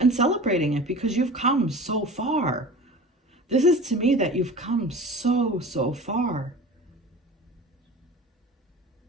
celebrating it, because you've come so far. This is to me that you've come so far.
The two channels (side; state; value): both; normal; correlation 0.37